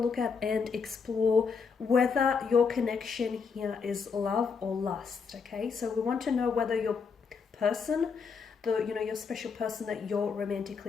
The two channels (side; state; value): right; quieter; 5.6 dB